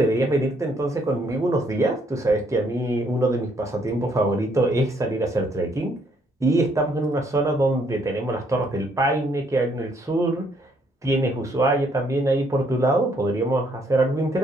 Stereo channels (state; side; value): normal; both; correlation 0.69